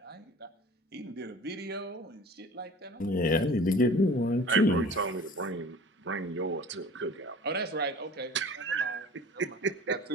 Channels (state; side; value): normal; both; correlation 0.44